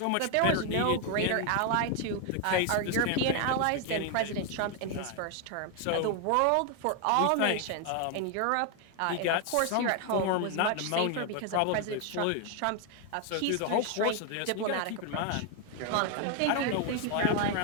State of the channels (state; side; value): different; both; correlation 0.01